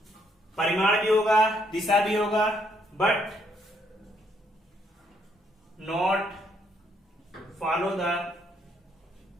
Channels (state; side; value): normal; both; correlation 0.71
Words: परिमाण भी होगा, दिशा भी होगा, but not follow the